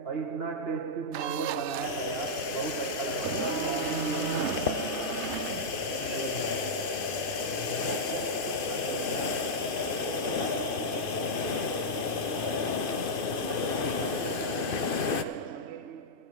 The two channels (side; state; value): left; late; 2.5 ms